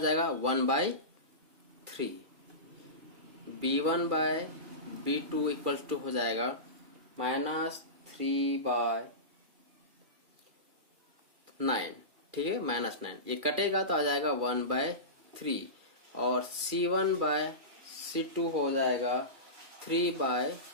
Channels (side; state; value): left; late; 2.4 ms